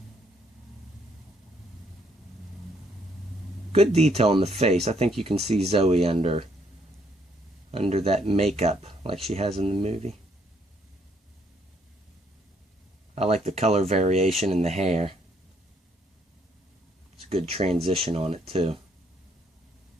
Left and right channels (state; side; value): normal; both; correlation 0.69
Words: Good detail in the face. I think you can see Zoe under that makeup like she has in the movie. I like the color variation in the hair. It's a good transition on it too.